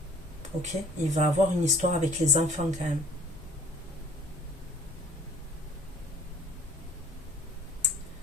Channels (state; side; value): normal; both; correlation 0.52